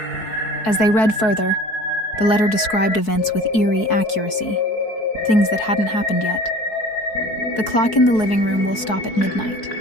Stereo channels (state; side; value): late; right; 4.6 ms